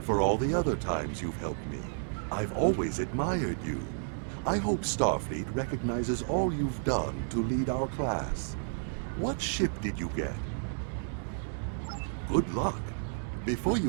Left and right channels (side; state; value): left; silent; digital silence